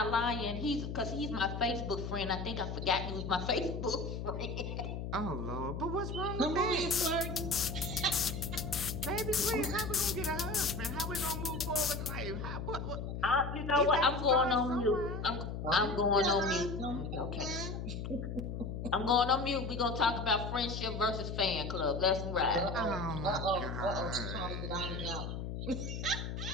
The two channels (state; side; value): noise; left; hum, 5 dB below the sound